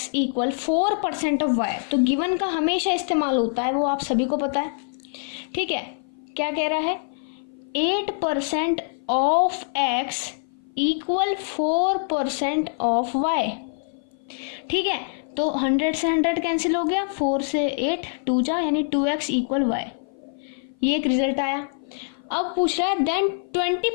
equal 4% of y। तो गिवन का हमेशा इस्तेमाल होता है, वो आप सभी को पता है, ठीक है। क्या कह रहा है, 8% of x equal 4% of y, ठीक है। तो 100 से 100 कैंसिल हो गया, 4 से 8 2 जा, यानी 2x इक्वल y। ये एक रिजल्ट आया। अब पूछ रहा है then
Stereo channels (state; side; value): silent; right; 56 dB below the other